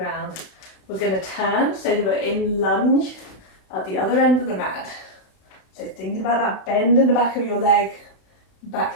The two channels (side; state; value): right; late; 32 ms